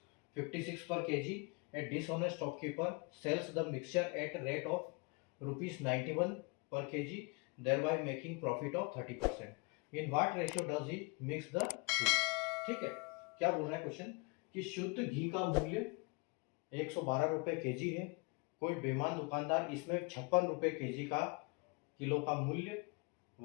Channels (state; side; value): quieter; right; 30.5 dB